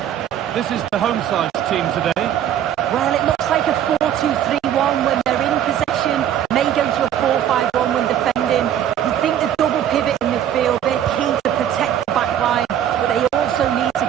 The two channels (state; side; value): quieter; left; 10.4 dB